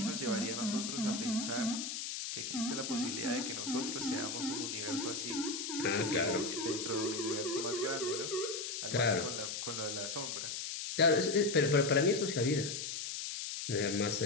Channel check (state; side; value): noise; left; hiss, 4 dB below the sound